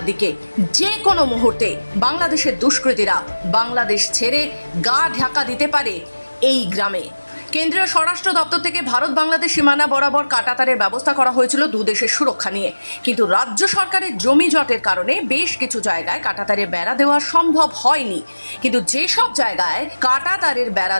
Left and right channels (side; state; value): both; inverted; correlation -1.00